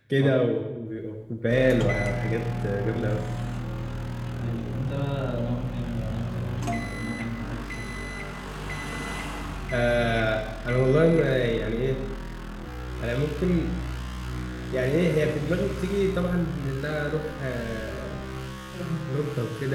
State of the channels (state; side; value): identical; both; correlation 1.00